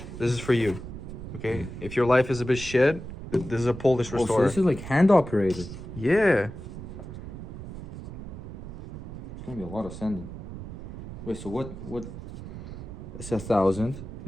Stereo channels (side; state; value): right; noise; rumble, 11 dB below the sound